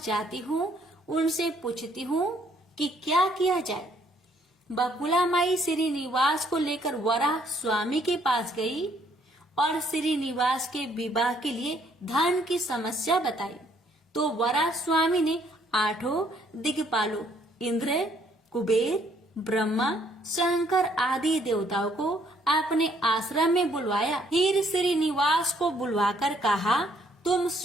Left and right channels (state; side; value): normal; both; correlation 0.66